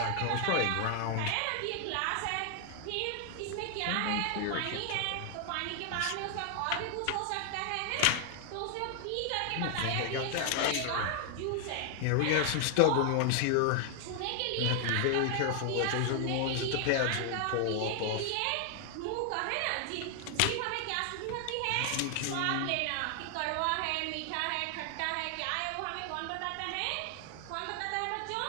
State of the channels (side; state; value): both; different; correlation 0.00